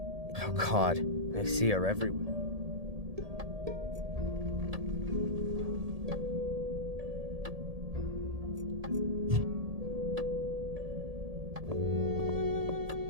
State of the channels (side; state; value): left; late; 1.8 ms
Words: God, I see her everywhere.